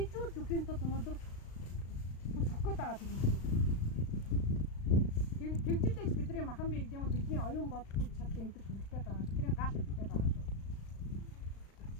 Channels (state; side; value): late; right; 36 ms